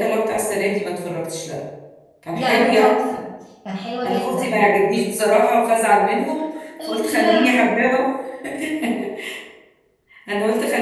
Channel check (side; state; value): both; identical; correlation 1.00